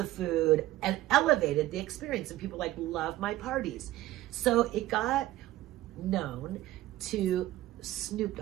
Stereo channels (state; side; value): quieter; left; 15.7 dB